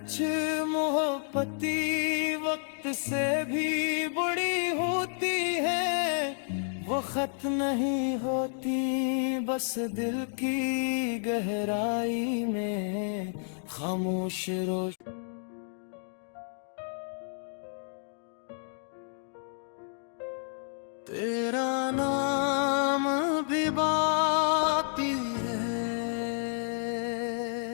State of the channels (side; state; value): right; silent; digital silence